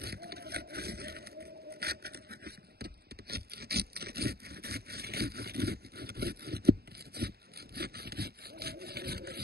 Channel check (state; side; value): late; left; 0.46 ms